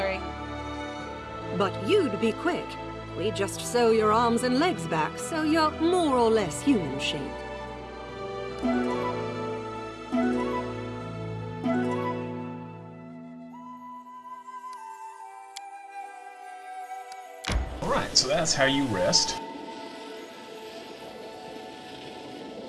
But you'd be quick. We just sew your arms and legs back, so you're more or less human-shaped. Alright, so that's how you rest.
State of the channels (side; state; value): both; identical; correlation 1.00